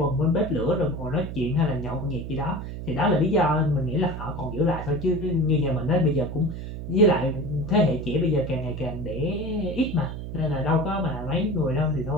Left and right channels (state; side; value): noise; right; hum, 8 dB below the sound